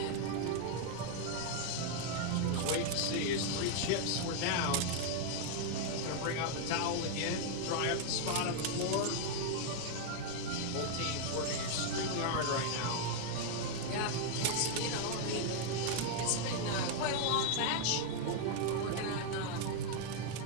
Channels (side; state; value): both; different; correlation 0.00